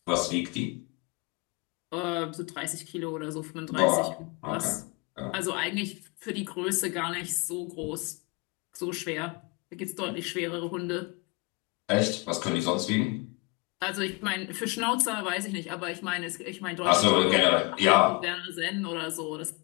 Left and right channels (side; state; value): right; quieter; 28.4 dB